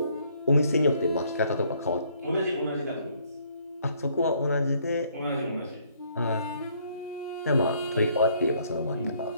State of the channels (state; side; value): inverted; both; correlation -0.65